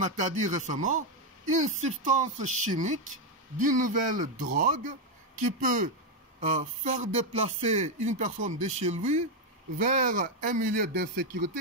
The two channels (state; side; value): normal; both; correlation 0.04